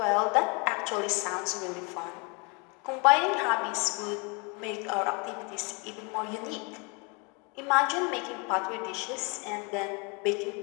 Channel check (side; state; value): right; quieter; 31.9 dB